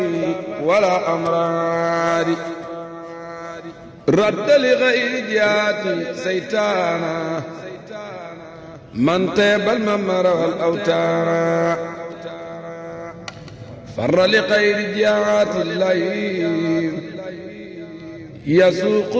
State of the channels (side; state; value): both; identical; correlation 1.00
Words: ولا أمراري رد لغير جهاتي سيتانا من طيب الممر والأوتار فر لغير جهات الليل يسوق